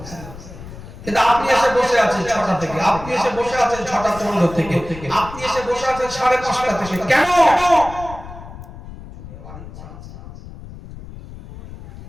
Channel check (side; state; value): left; noise; rumble, 14 dB below the sound